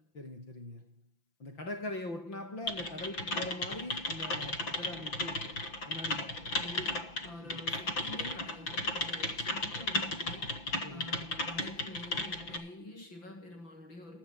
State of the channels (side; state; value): right; late; 5.9 ms